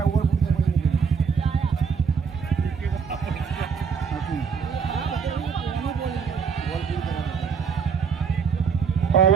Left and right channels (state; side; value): quieter; left; 6.1 dB